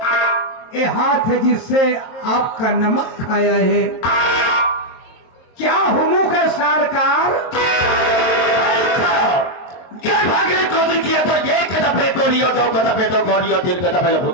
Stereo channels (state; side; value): late; right; 23 ms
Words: ए हाथ जिससे आपका नमक खाया है। क्या हुमुक है सरकार को किया तो एक दफे तो लियो, दो दफे तो गौरियो, तीन दफे